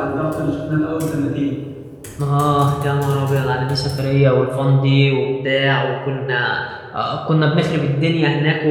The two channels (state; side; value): identical; both; correlation 1.00